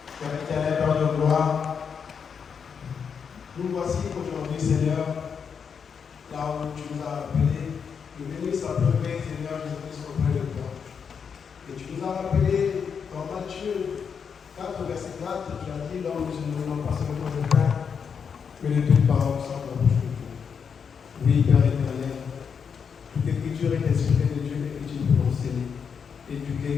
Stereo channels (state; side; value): quieter; right; 6.6 dB